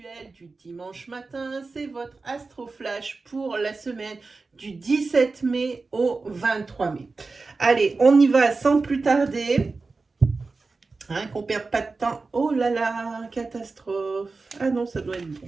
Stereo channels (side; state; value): left; quieter; 3.9 dB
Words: du dimanche matin, c'est votre Astro Flash pour la semaine du 17 mai au 23 mai. Allez, on y va sans plus tarder, qu'on ne perde pas de temps. Oh là là, catastrophe. Ah non, ça doit être bon.